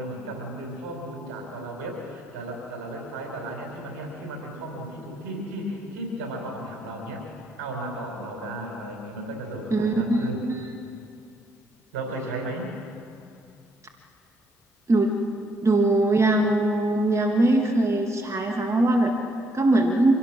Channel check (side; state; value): both; normal; correlation 0.72